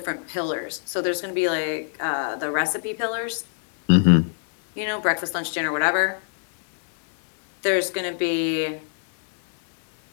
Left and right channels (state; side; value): silent; right; 63 dB below the other